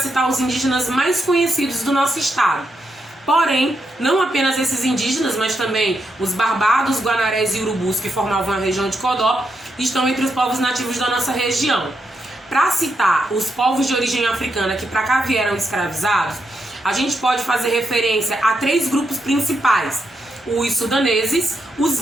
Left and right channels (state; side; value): normal; both; correlation 0.82